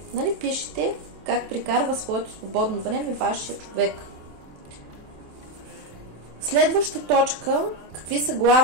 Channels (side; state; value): left; late; 27 ms